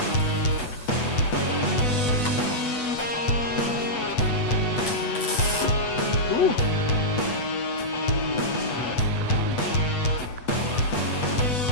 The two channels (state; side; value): late; right; 8.1 ms